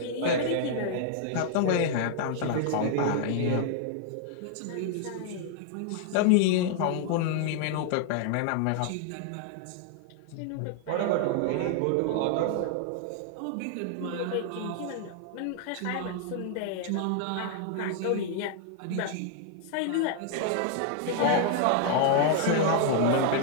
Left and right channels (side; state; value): both; different; correlation 0.00